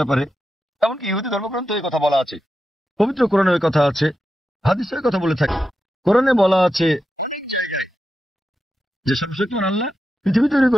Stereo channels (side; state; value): both; normal; correlation 0.89